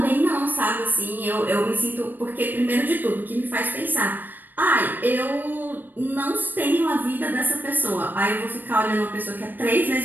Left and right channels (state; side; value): late; left; 0.090 ms